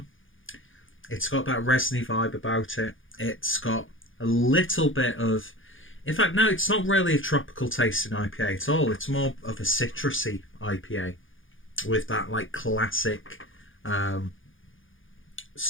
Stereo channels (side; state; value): right; late; 0.58 ms